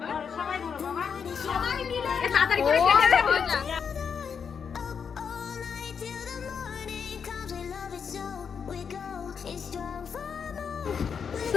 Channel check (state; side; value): quieter; right; 6.6 dB